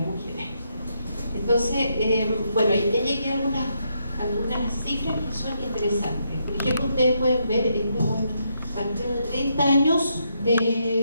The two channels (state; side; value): inverted; both; correlation -0.78